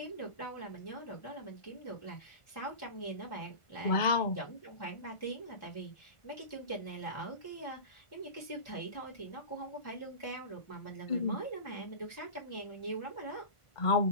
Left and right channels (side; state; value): right; late; 1.4 ms